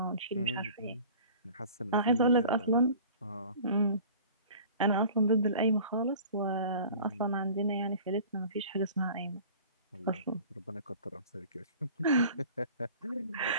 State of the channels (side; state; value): both; inverted; correlation -0.44